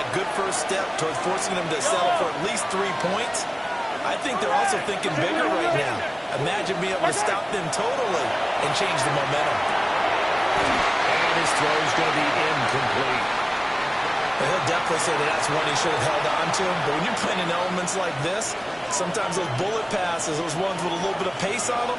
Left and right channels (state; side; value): identical; both; correlation 1.00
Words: good first step towards forcing them to settle for at least 3 points? I think they're also thinking bigger right now. Imagine being able to stop them totally and change the momentum. And his throw is going to be incomplete. And he'll definitely say that that's one he should have held on to. But when you're playing in elements like this, sometimes those bullet passes, those ones with a little bit of pace on them,